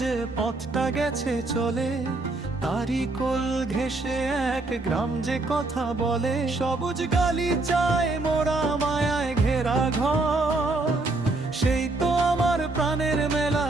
যে পথটা গেছে চলে, তারই কোল ঘেঁষে এক গ্রাম যে কথা বলে। সবুজ গালিচায় মোরা মায়ায় ঘেরা ঘর, সেই তো আমার প্রাণের মেলা,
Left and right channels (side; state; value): left; quieter; 3.1 dB